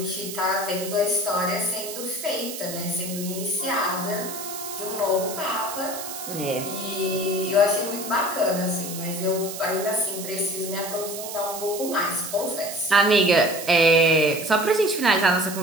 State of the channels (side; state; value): right; noise; hiss, 9 dB below the sound